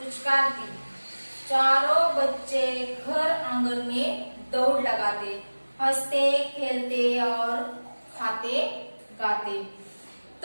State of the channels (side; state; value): both; inverted; correlation -1.00